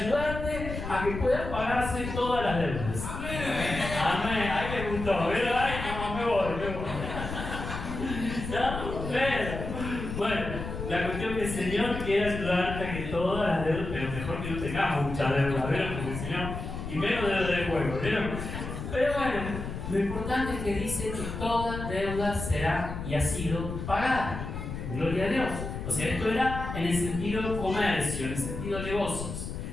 a que puedas pagarse todas las deudas. Amén. Ay, me gustó. Ay, no, me voy. ¿No? Bueno, la cuestión es que el Señor quiere ayudarte a que todas las deudas, pero mejor que no tengamos mucha deuda, ¿vieron? Porque el Señor, y menos deuda de juego, ¿vieron? Pero bueno, lo importante es que dice que toda deuda será y ha sido pagada. Gloria a Dios. O sea, esto era en el sentido comercio, en el sentido negocios.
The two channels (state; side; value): noise; left; rumble, 7 dB below the sound